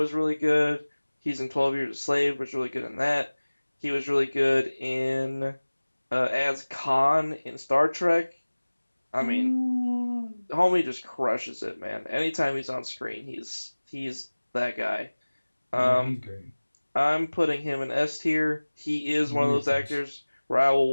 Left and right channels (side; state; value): both; inverted; correlation -1.00